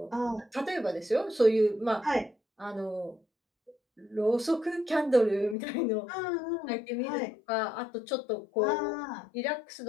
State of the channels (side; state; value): right; drops out; at 5.6 s